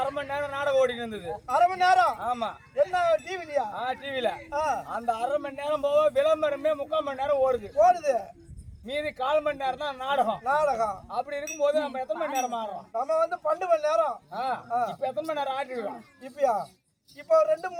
மணி நேரம் நாடகம் ஓடிட்டு இருந்தது. 1/2 மணி நேரம்? ஆமா. என்ன டிவிலயா? டிவில. அந்த 1/2 மணி நேரம் போக விளம்பரமே 3/4 மணி நேரம் ஓடுது. மீதி 1/4 மணி நேரம் தான் நாடகம். அப்படி இருக்கும்போது நம்ம எத்தனை மணி நேரம் ஆடுறோம்? நம்ம வந்து 12 மணி நேரம். இப்ப எத்தனை மணி நேரம் ஆடிடுவோம்? இப்பயா இப்போ 2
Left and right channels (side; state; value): both; identical; correlation 1.00